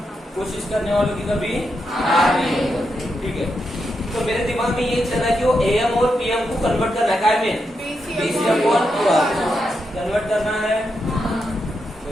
कोशिश करने वालों की कभी हार नहीं होती। ठीक है, तो मेरे दिमाग में ये चला कि वो AM और PM को कन्वर्ट करना है, काय में BC अपॉन QR कन्वर्ट करना है।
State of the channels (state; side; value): normal; both; correlation 0.84